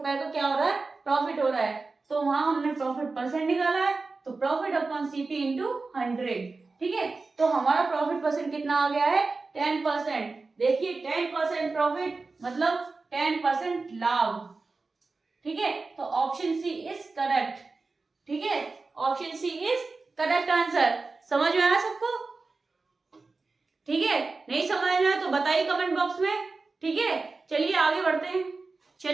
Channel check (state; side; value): quieter; left; 3.9 dB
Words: का क्या हो रहा है, प्रॉफिट हो रहा है। तो वहां हमने प्रॉफिट परसेंट निकाला है, तो प्रॉफिट अपॉन सीपी इंटू 100, ठीक है। तो हमारा प्रॉफिट परसेंट कितना आ गया है, 10%। देखिए 10% प्रॉफिट मतलब 10% लाभ, ठीक है। तो ऑप्शन सी इज करेक्ट, ठीक है, option c is correct answer. समझ में आया सबको, ठीक है। नहीं समझ में आया तो बताइए कमेंट बॉक्स में, ठीक है। चलिए आगे बढ़ते हैं,